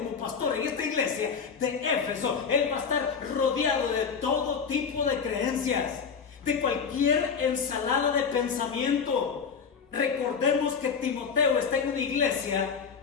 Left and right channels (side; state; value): right; quieter; 6.1 dB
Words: pastor en esta iglesia de Éfeso, él va a estar rodeado de todo tipo de creencias, de cualquier ensalada de pensamiento. Recordemos que Timoteo está en una iglesia